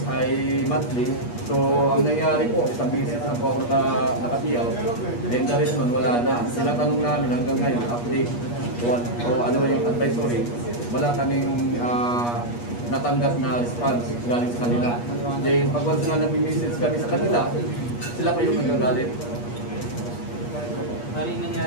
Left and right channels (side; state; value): right; late; 8.4 ms